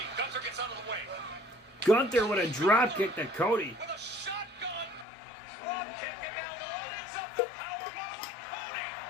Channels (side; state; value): right; drops out; at 5.1 s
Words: Gunther with a drop kick to Cody.